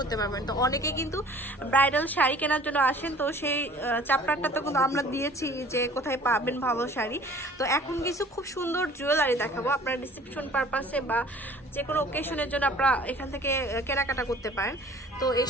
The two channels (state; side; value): normal; both; correlation 0.50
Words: পারবেন। তো অনেকে কিন্তু ব্রাইডাল শাড়ি কেনার জন্য আসেন, তো সেই চ্যাপ্টারটা তো কিন্তু আমরা দিয়েছি যে কোথায় পাবেন ভালো শাড়ি। তো এখন কিছু খুব সুন্দর জুয়েলারি দেখাবো, আপনারা রিসেপশন পারপাসে বা যে কোনো ওকেশনের জন্য আপনারা এখান থেকে কেনাকাটা করতে পারেন। তো এই